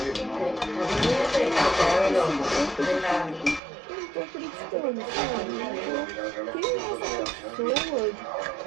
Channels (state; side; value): drops out; left; at 3.6 s